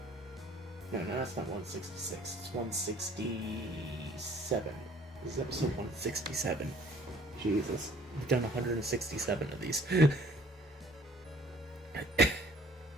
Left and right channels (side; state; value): both; normal; correlation 0.56